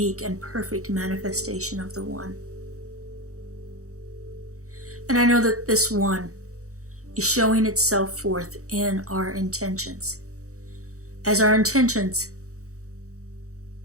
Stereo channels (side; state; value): left; late; 0.65 ms